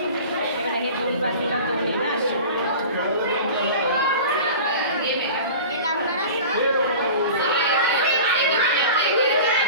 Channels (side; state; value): both; inverted; correlation -0.37